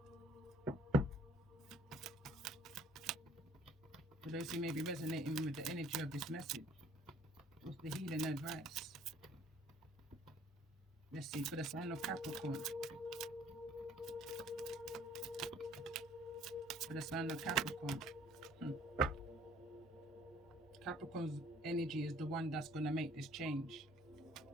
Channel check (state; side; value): normal; both; correlation 0.57